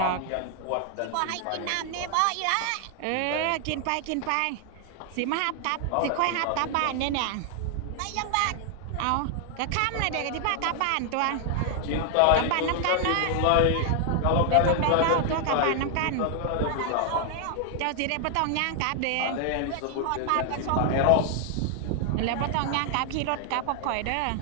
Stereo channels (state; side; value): different; both; correlation 0.00